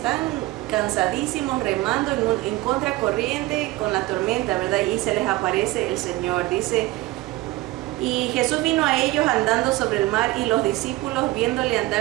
cansadísimos remando en contracorriente con la tormenta, ¿verdad? Y se les aparece el Señor. Dice, y Jesús vino a ellos andando sobre el mar, y los discípulos, viéndole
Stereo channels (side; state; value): left; quieter; 18.9 dB